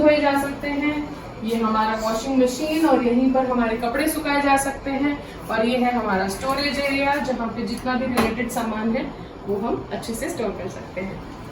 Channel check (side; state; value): both; identical; correlation 1.00